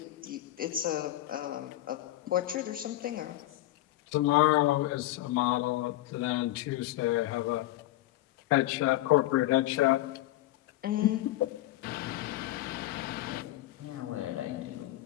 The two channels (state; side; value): quieter; right; 15.8 dB